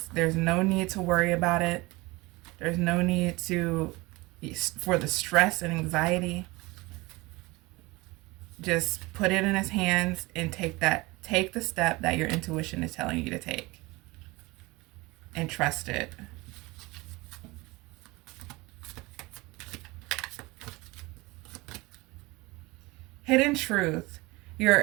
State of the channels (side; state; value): left; quieter; 22.9 dB